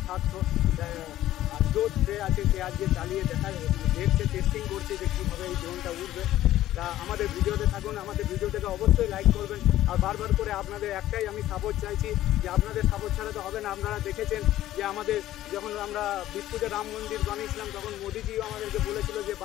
থাকতো। আর জোর সে আছে, সে আজকে চালিয়ে দেখছে, টেস্টিং করছে যে কীভাবে এই ড্রোনটা উঠবে। তা আমাদের ভিডিওতে থাকুন, আমাদের ভিডিওটাকে অবশ্যই লাইক করবেন। আর বারবার করে আপনাদের একটাই আমি সাপোর্ট চাইছি যে আপনাদের সাপোর্ট ছাড়া তো হবে না। আপনারা দেখেছেন যে আমাদের যখন আমরা বিষ্ণুতে রাম মন্দির বানিয়েছিলাম তখন মোদিজিও আমাদেরকে বলেছিল যে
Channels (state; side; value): quieter; right; 13.8 dB